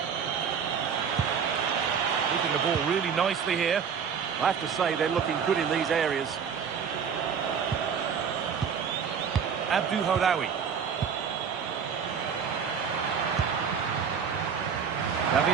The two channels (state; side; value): quieter; left; 6.9 dB